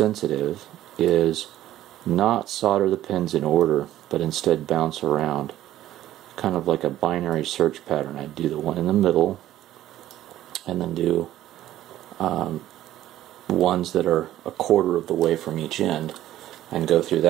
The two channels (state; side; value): quieter; left; 13.4 dB